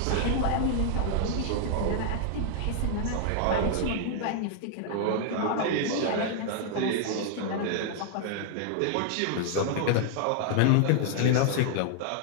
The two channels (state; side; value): different; both; correlation -0.01